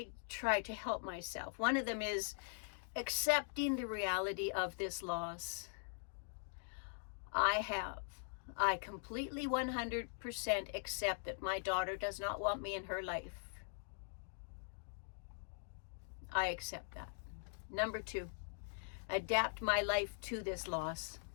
try to help myself. One of them is accepting the reality of this loss. I completely 100% accept that my daughter does not want me in her life. I accept that. Number 2, adapt my life to this loss.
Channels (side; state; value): right; silent; digital silence